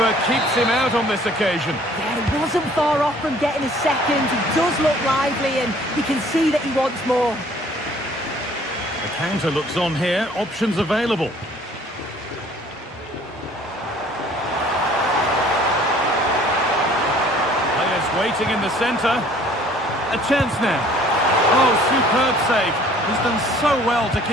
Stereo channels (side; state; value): both; normal; correlation 0.55